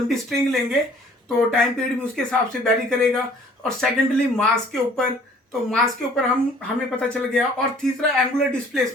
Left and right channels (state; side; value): normal; both; correlation 0.55